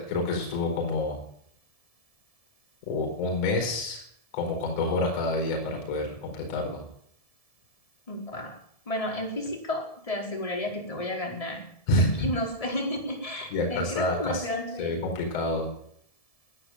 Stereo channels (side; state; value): right; late; 1.7 ms